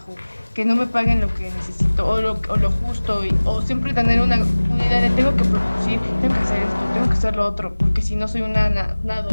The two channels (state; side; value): inverted; both; correlation -1.00